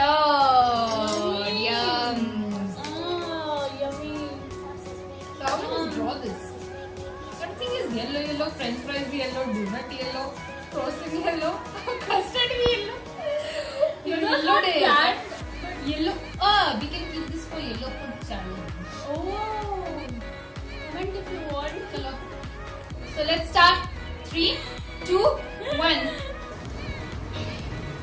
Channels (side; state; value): both; identical; correlation 1.00